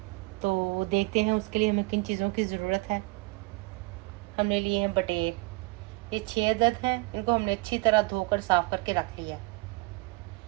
तो देखते हैं उसके लिए हमें किन चीज़ों की ज़रूरत है। हमने लिए हैं बटेर, ये 6 अदद हैं। इनको हमने अच्छी तरह धोकर साफ़ करके रख लिया है।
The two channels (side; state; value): left; quieter; 26.2 dB